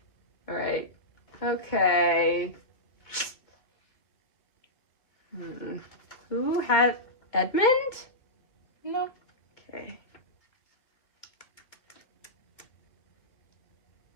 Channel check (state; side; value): late; right; 2.2 ms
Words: Alright. Okay. Who had Edmund? No. Okay.